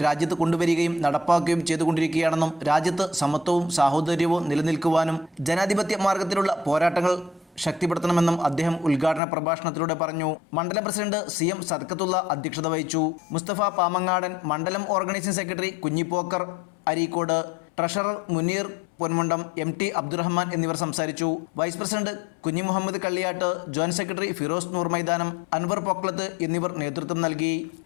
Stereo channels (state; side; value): drops out; right; at 9.2 s